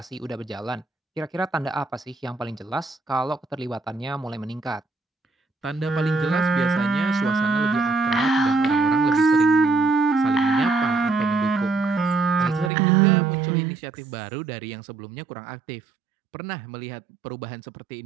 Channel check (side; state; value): left; drops out; at 12.7 s